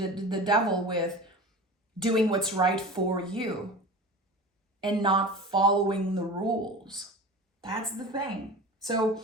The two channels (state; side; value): normal; both; correlation 0.33